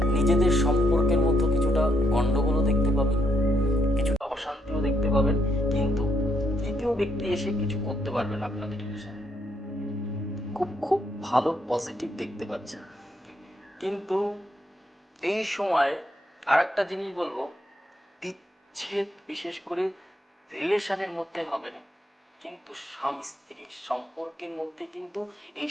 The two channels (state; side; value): normal; both; correlation 0.76